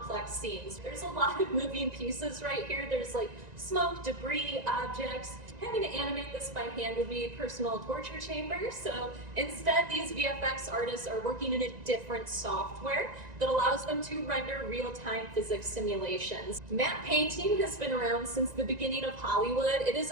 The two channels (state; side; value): late; left; 1.9 ms